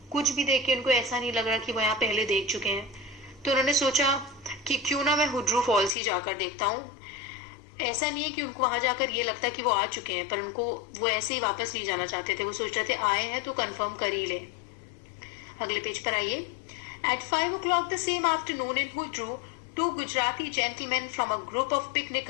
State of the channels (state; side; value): drops out; right; at 5.9 s